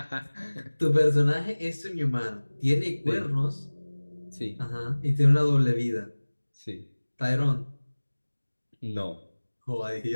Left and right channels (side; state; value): both; inverted; correlation -1.00